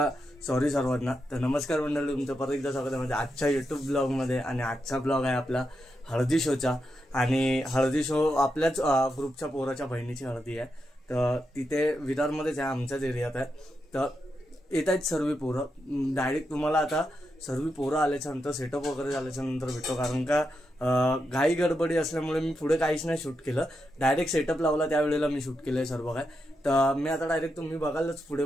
सॉरी सर्वांना. तर नमस्कार मंडळी, तुमचं परत एकदा स्वागत आहे म्हणजे आजच्या यूट्यूब ब्लॉगमध्ये. आणि आजचा ब्लॉग आहे आपला हळदी शोचा. आणि हळदी शो आपल्याच ग्रुपच्या पोराच्या बहिणीची हळदी आहे. तर तिथे विरारमध्येच आहे, आमच्याच एरियात आहे. तर येत आहेत सर्व पोरं. डायरेक्ट तुम्हाला आता सर्व पोरं आल्याच्या नंतर सेटअप वगैरे झाल्याच्या नंतर भेटतो. कारण का घाई गडबडी असल्यामुळे मी पुढे काहीच नाही शूट केलं. डायरेक्ट सेटअप लावला त्यावेळेला मी शूट केलंय सर्व काय. तर मी आता डायरेक्ट तुम्ही बघालच पुढे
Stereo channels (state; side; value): normal; both; correlation 0.85